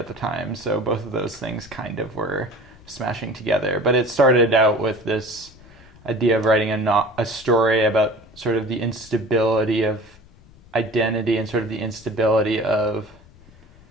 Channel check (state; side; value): noise; left; rumble, 25 dB below the sound